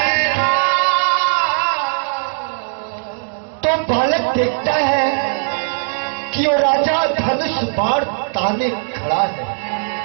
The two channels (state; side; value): silent; left; digital silence